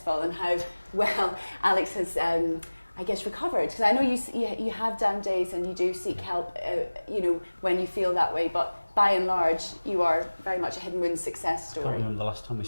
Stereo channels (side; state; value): both; inverted; correlation -1.00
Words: and how well Alex has recovered, because I know you have down days and you do seek help, when you feel that way, but by and large, you are very much a hidden wounds success story. I can't remember the last time we